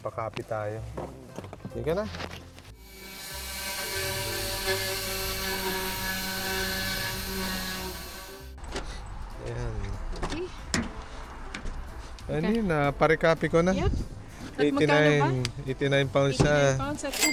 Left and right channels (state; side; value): identical; both; correlation 1.00